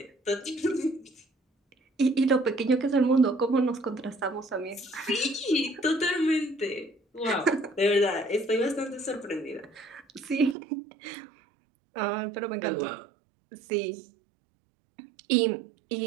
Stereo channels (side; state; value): left; drops out; at 10.6 s